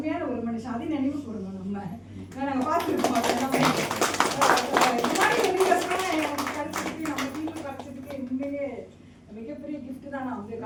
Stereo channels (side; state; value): both; identical; correlation 1.00